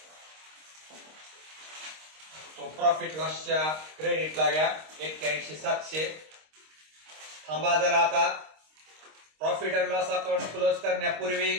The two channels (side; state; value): left; late; 26 ms